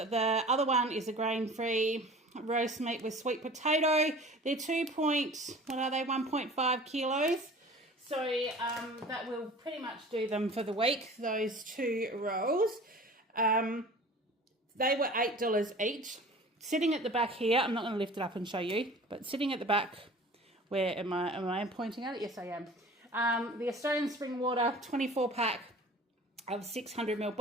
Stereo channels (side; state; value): both; normal; correlation 0.43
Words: other one is a grain-free roast meat with sweet potato. They're 1.5 kilos. So that will pretty much do them for the week, those two rolls. They were $8 each. Sitting at the back here, I'm not going to lift it up and show you, but sitting at the back, where am I pointing at it? Yes, I am. The Australian Spring Water 24 pack of 600ml